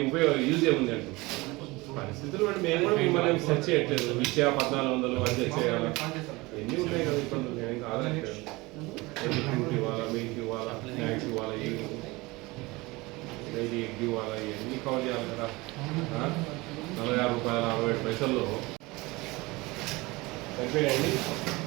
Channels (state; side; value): quieter; left; 22.7 dB